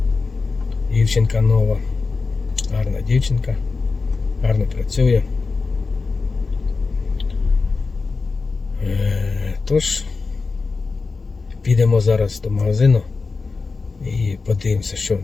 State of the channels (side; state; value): right; quieter; 4.3 dB